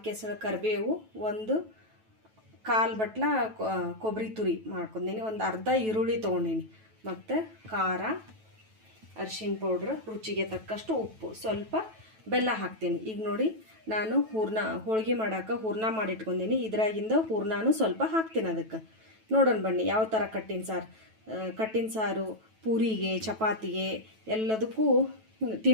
ಎಸಳು ಕರಿಬೇವು, 1 ಬಟ್ಲ ಕೊಬ್ಬರಿ ತುರಿ ಮಾಡ್ಕೊಂಡೀನಿ, 1 ಅರ್ಧ ಈರುಳ್ಳಿ ತೊಗೊಂಡೀನಿ, ಮತ್ತು ಖಾರ, ಅರಿಶಿನ ಪೌಡ್ರ್, ರುಚಿಗೆ ತಕ್ಕಷ್ಟು ಉಪ್ಪು, ಸ್ವಲ್ಪ ಬೆಲ್ಲ ಹಾಕ್ತೀನಿ. ಈಗ ನೋಡಿ, ನಾನು ಹೋಳಿಗೆ ಮಾಡೋಕೆ ಹೂರ್ಣ ಮಾಡಿಟ್ಕೊಂಡೀನಿ. ಇದ್ರಾಗಿಂದ ಹೂರ್ಣನೂ ಸ್ವಲ್ಪ ಹಾಕ್ತೀನಿ ಅದಕ್ಕೆ. ನೋಡೋಣ ಬನ್ನಿ ಯಾವ ಥರ ಕಟ್ಟಿನ ಸಾರು ಪೂರಿಗೆ, ಚಪಾತಿಗೆ ಎಲ್ಲದಕ್ಕೂ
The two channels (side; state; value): left; late; 9.2 ms